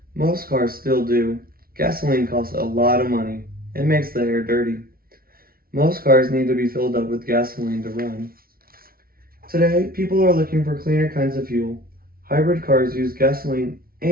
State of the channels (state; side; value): late; left; 0.43 ms